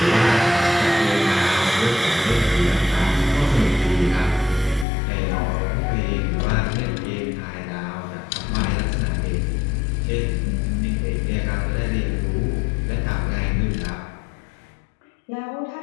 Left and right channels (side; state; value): right; drops out; at 4.9 s